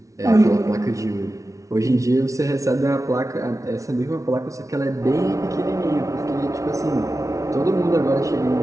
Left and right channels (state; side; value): late; left; 0.15 ms